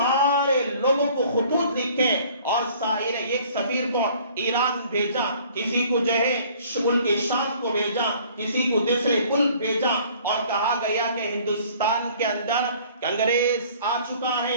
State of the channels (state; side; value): inverted; both; correlation -0.54